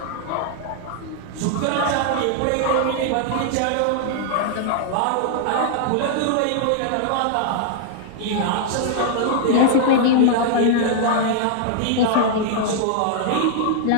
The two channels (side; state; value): both; different; correlation -0.01